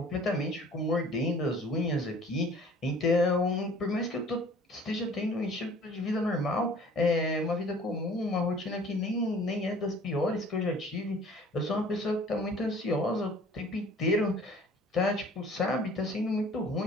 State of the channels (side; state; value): both; normal; correlation 0.50